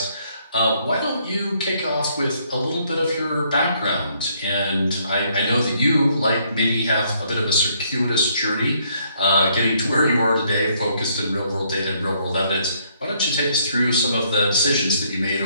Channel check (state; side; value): inverted; both; correlation -0.68